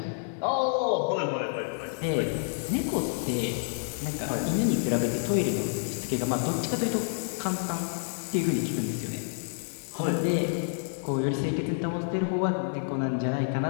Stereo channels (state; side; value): silent; right; 59 dB below the other